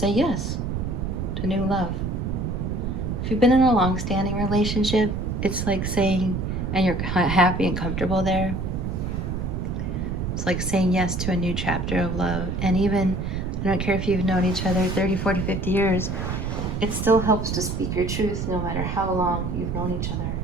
yes to new love. If you've been in a long-standing relationship, it's like saying, and you're happy and comfortable there, it's like saying yes to a new chapter of love. And even, I don't care if you've known each other 30, 40, 50 years, it still helps to speak your truth no matter how long you've known each other.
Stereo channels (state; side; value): noise; right; rumble, 2 dB below the sound